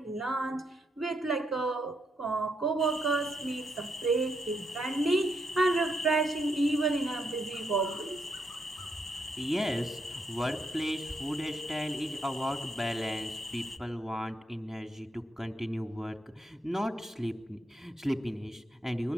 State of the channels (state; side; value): normal; both; correlation 0.78